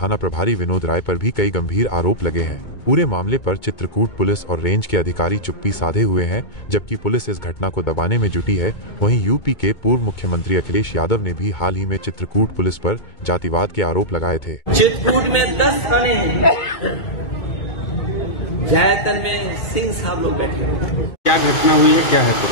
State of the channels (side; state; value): right; late; 2.2 ms